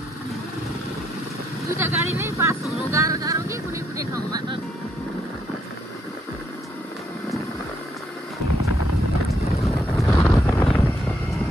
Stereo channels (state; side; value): normal; both; correlation 0.73